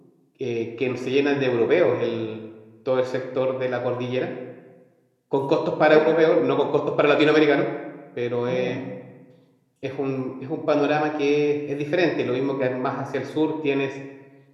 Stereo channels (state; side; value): identical; both; correlation 1.00